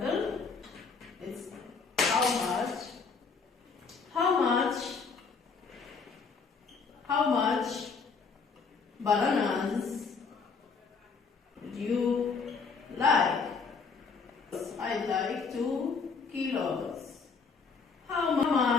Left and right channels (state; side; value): quieter; right; 5.0 dB